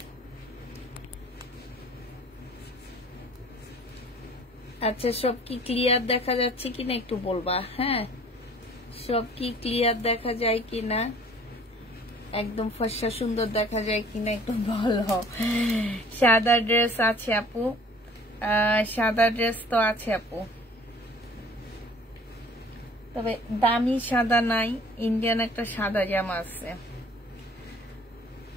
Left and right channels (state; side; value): normal; both; correlation 0.51